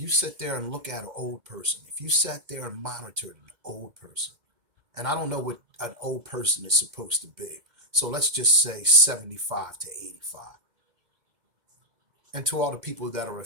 sit there and look at an old person, if you sat there and monitored an old person, and I don't know what an old person is supposed to be, so let's just say 75 to 85. And to all the people that are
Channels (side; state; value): left; late; 2.1 ms